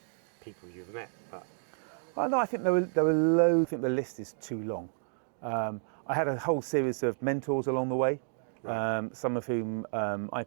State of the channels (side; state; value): left; silent; digital silence